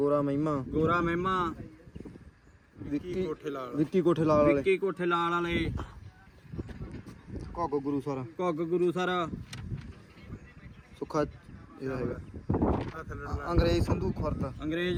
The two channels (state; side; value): identical; both; correlation 1.00